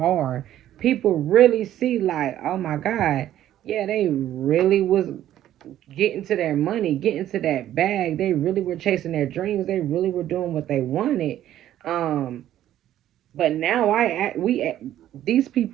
People really see, like, oh my God, yeah, they really was getting to their money, getting to that bag. They really were chasing their dreams. They really were doing what they wanted. Um, but now these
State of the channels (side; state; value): left; quieter; 12.3 dB